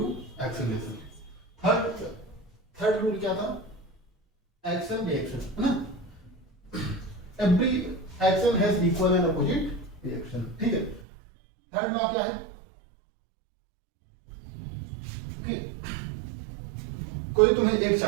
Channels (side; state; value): left; drops out; at 11.1 s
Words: acceleration. Third rule क्या था? एक्शन रिएक्शन, है ना। Every action has equal and opposite reaction, ठीक है। थर्ड लॉ क्या है कि कोई तुम्हें एक